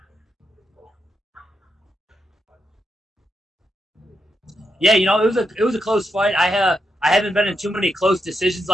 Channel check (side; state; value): both; normal; correlation 0.83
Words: Yeah, it was a close fight. I haven't been in too many close decisions